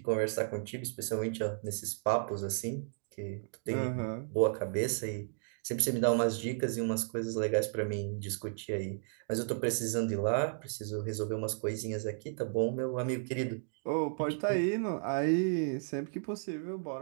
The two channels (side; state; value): left; silent; digital silence